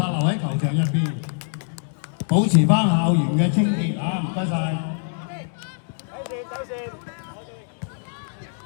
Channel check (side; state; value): right; silent; digital silence